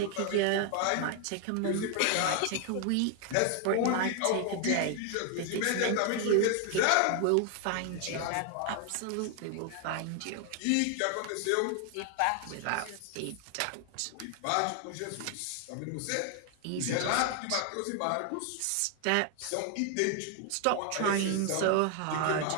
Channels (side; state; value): both; different; correlation 0.00